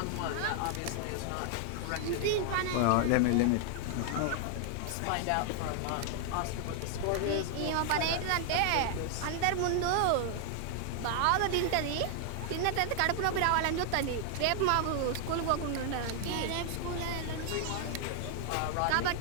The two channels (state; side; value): different; both; correlation 0.00